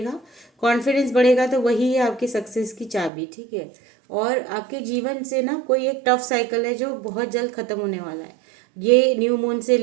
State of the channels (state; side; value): drops out; left; at 3.1 s